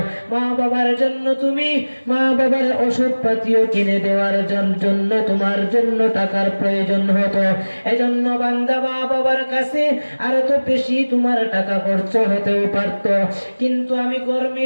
মা বাবার জন্য তুমি মা বাবার ওষুধ পাতিও কিনে দেওয়ার জন্য তোমার জন্য টাকার প্রয়োজন হতো। এজন্য বান্দা মা বাবার কাছে আর তো বেশি তোমার টাকা খরচ হতেও পারত, কিন্তু আমি ঘর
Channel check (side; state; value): both; inverted; correlation -1.00